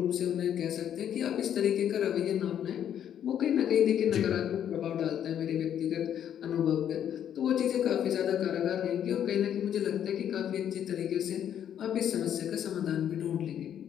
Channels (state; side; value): quieter; right; 9.7 dB